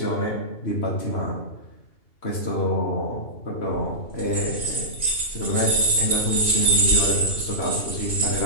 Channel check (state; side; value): late; right; 2.8 ms